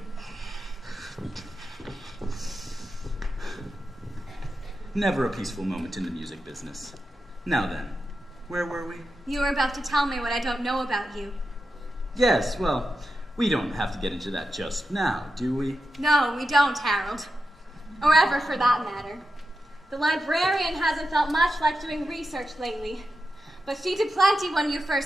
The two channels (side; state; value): both; normal; correlation 0.89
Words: Never a peaceful moment in the music business. Now then, where were we? You were about to tell me what I don't know about you. Yes, well, we don't have to get into that just now, do we? No, we don't, Harold. Or ever, for that matter. The librarian hasn't felt much like doing research lately. But she did plenty when you